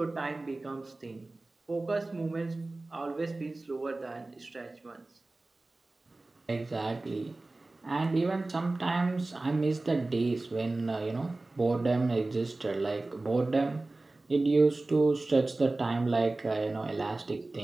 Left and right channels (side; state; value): left; quieter; 3.0 dB